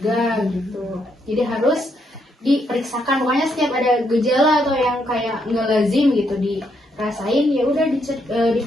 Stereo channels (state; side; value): normal; both; correlation 0.76